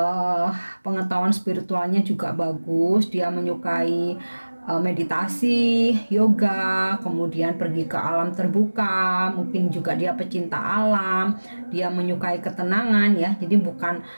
pengetahuan spiritualnya juga bagus. Dia menyukai meditasi, yoga, kemudian pergi ke alam terbuka, mungkin juga dia pecinta alam, dia menyukai ketenangan ya, jadi bukan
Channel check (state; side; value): inverted; both; correlation -1.00